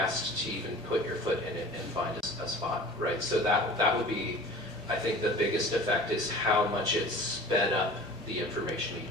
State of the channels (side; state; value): both; normal; correlation 0.42